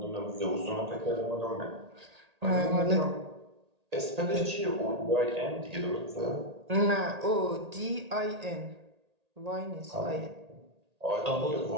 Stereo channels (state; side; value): late; left; 1.8 ms